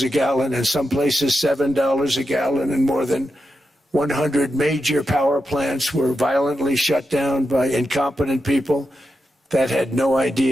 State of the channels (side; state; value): both; normal; correlation 0.87